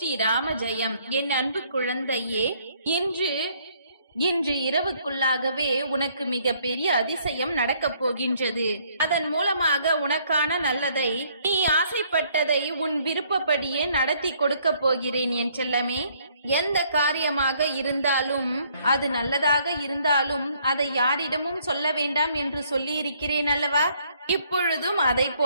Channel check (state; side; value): inverted; both; correlation -0.65